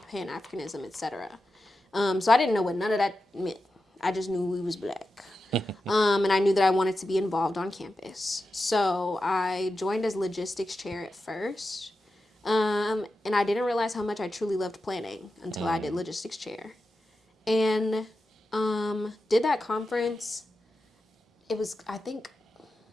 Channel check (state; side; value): normal; both; correlation 0.91